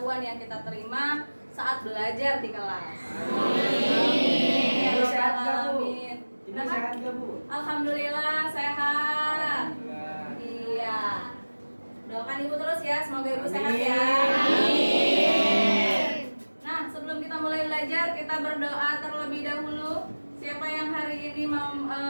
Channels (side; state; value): both; inverted; correlation -1.00